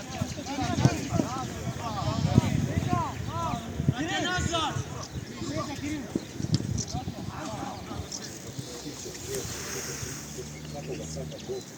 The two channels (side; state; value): both; identical; correlation 1.00